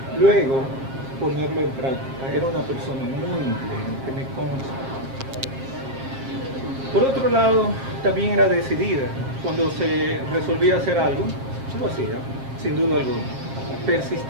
luego ponerlo en práctica. Era una persona muy inteligente, me consta. Por otro lado, también era decidida. Cuando se resolvía hacer algo, lo hacía, sin duda alguna.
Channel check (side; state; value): left; late; 7.5 ms